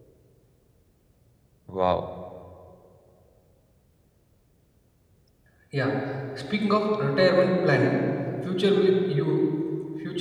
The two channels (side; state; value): both; identical; correlation 1.00